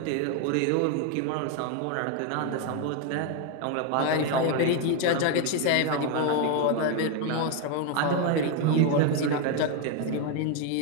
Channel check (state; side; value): different; both; correlation 0.01